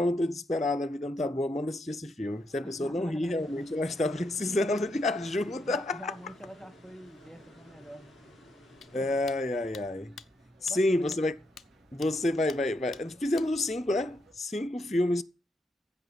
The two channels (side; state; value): both; normal; correlation 0.79